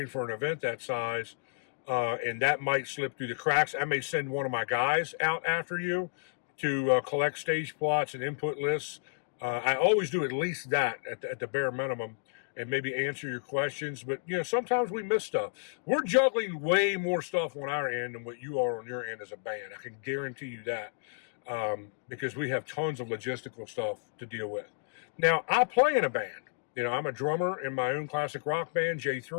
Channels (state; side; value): silent; right; digital silence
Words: for an event that size. And that might slip through the cracks. I may send one of my guys out after you to collect stage plots and input lists. I always do at least that at the bare minimum. and maybe answer your questions. But, sometimes we miss stuff. We're juggling way more stuff on our end than what you are on your end as a band. I can guarantee you that, because we have tons of logistical stuff to deal with. Now, I play in a band. I'm a drummer in my own classic rock band,